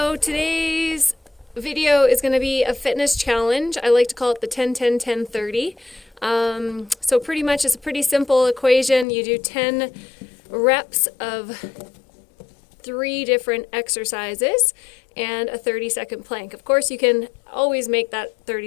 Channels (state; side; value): drops out; right; at 9.1 s